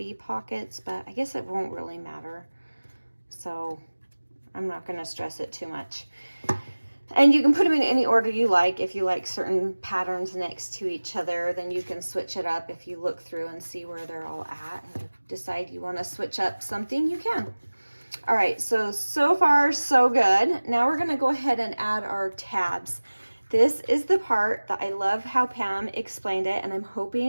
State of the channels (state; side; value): inverted; both; correlation -1.00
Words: pockets, but I guess it won't really matter. So I'm not going to stress it too much. And you can put them in any order you like. If you like certain patterns next to each other, then you can switch it up. If you look through and see where they're all at and you decide you want to switch up something, you can. All right, so far so good. Now we're going to go ahead and add our tabs. This is the part that I love how Pam explained it, and I'm